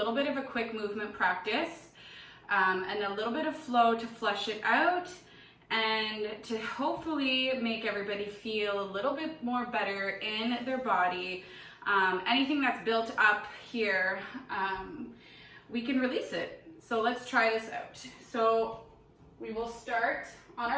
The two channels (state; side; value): identical; both; correlation 1.00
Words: bit of a quick movement practice and a little bit of flow to flush it out and to hopefully make everybody feel a little bit more better in their body. Anything that's built up here, we can release it. So let's try this out. So we will start on